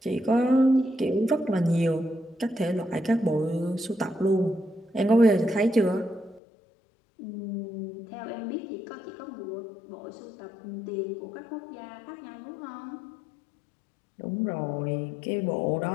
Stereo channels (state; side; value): drops out; right; at 6.4 s